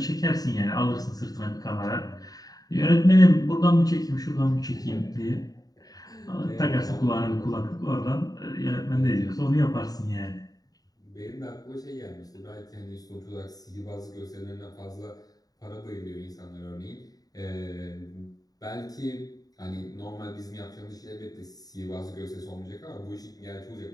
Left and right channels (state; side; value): late; right; 0.18 ms